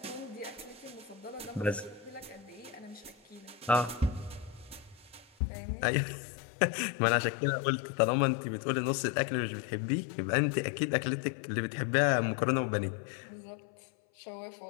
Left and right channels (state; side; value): drops out; right; at 5.3 s